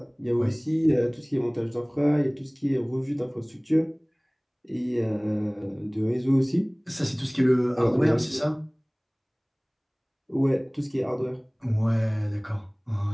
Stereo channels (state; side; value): identical; both; correlation 1.00